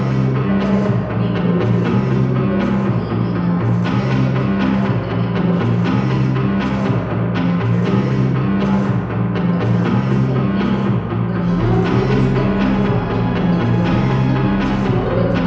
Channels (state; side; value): identical; both; correlation 1.00